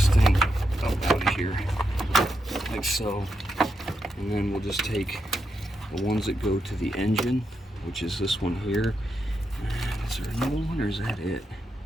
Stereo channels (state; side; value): normal; both; correlation 0.84